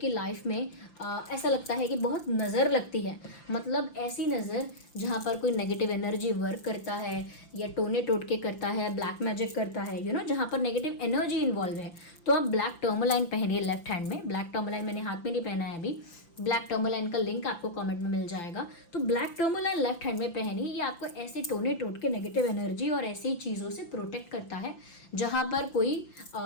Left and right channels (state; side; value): late; right; 5.9 ms